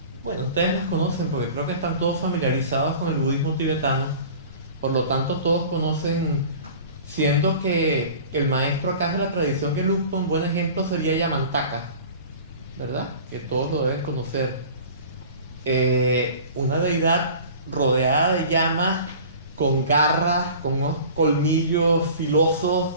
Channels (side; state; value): both; inverted; correlation -0.42